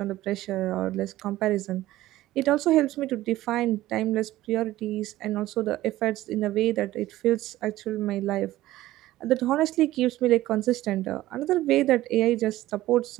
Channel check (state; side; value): quieter; left; 15.7 dB